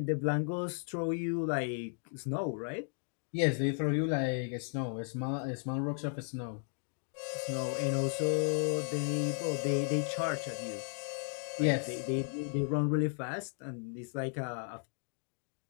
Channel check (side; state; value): right; silent; 54 dB below the other